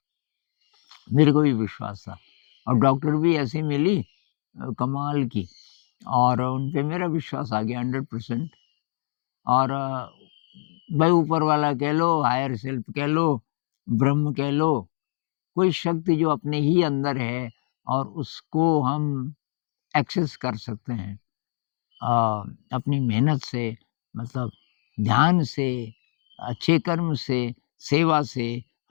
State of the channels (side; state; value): right; silent; 62 dB below the other